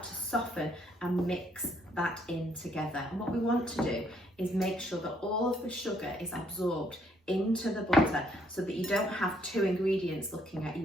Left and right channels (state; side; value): normal; both; correlation 0.69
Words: to soften and mix that in together. And what we want to do is make sure that all of the sugar is absorbed into the butter so that you don't have two ingredients looking at